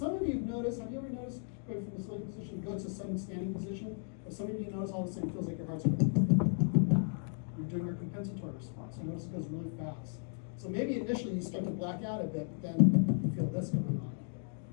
of you have noticed, have you ever noticed going from the sitting position, go to a sudden standing position? If some of you notice all of a sudden it feels like your heart's racing. You're doing your compensatory response. You notice it goes really fast. So maybe initially you start to black out a bit, but then you feel this going on.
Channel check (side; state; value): right; silent; 54 dB below the other